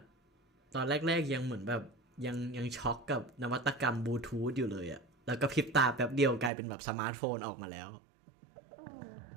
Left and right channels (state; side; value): drops out; left; at 6.5 s